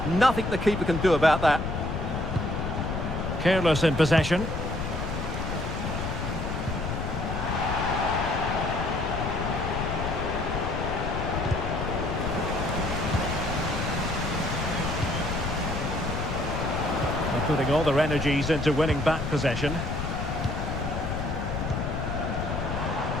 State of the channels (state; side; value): noise; left; rumble, 3 dB below the sound